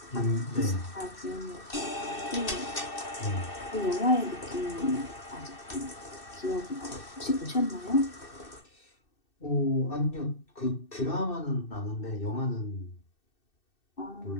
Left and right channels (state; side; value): late; right; 2.6 ms